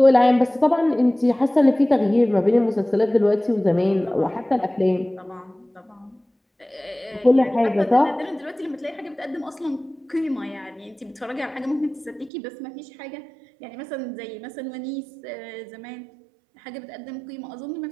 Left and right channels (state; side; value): drops out; left; at 12.3 s